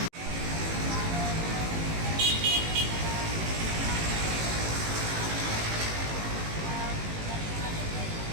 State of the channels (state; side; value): late; left; 18 ms